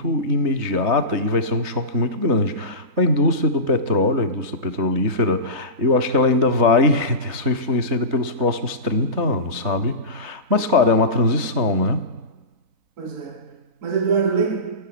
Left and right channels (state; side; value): late; left; 3.9 ms